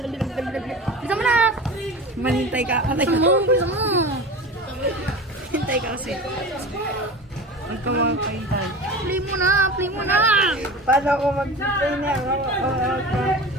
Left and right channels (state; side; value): normal; both; correlation 0.33